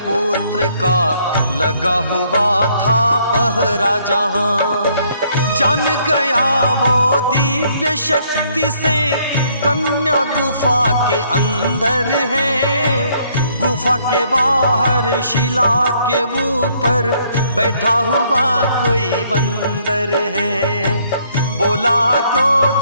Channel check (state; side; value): inverted; both; correlation -0.67